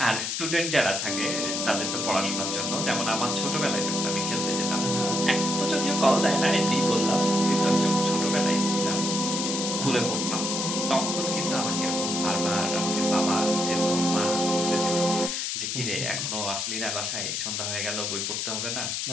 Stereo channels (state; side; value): noise; left; hiss, 2 dB below the sound